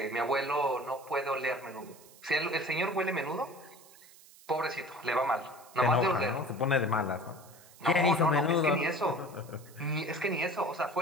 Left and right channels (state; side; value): noise; right; hiss, 23 dB below the sound